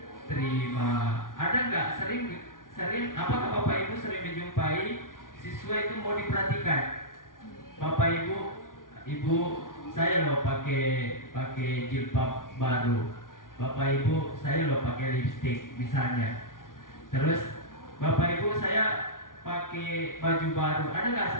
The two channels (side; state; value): right; late; 0.89 ms